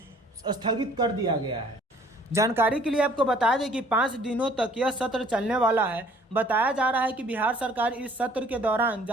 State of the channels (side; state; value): both; normal; correlation 0.57